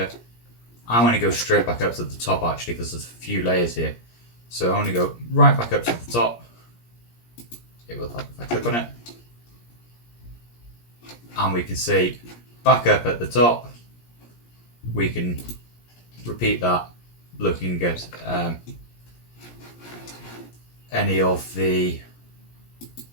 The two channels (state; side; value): late; right; 17 ms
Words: I'm going to go straight back up to the top actually, because there's a few layers here. So I'm going to go right back up to the top. It will help if I click on it. And we can see back up at the top. We can repeat that, looking at any of the